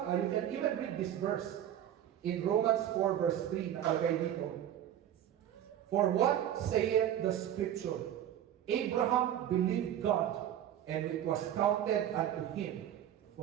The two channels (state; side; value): quieter; left; 10.9 dB